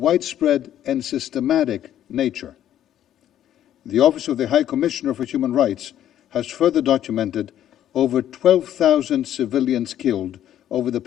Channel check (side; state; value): right; quieter; 11.3 dB